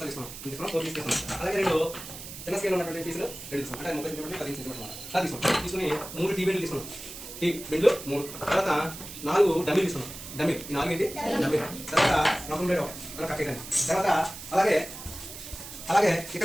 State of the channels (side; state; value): right; noise; hiss, 12 dB below the sound